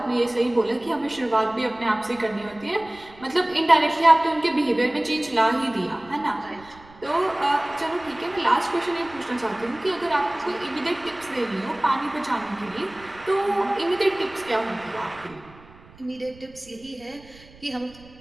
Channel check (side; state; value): right; noise; rumble, 23 dB below the sound